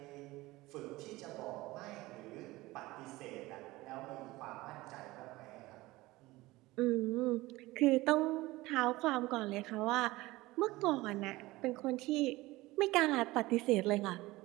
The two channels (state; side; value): quieter; left; 19.5 dB